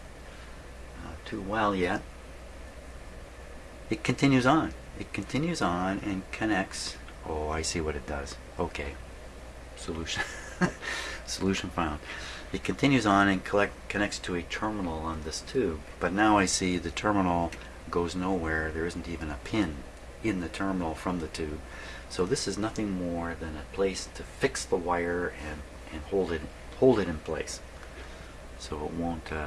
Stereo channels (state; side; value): identical; both; correlation 1.00